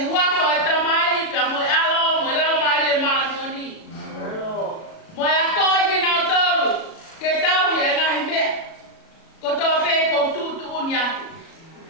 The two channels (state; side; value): late; right; 37 ms